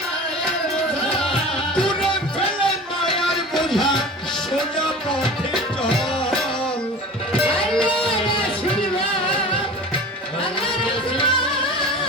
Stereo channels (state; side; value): normal; both; correlation 0.37